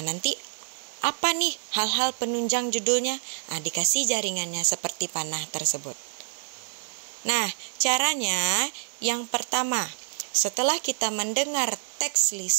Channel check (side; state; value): left; silent; digital silence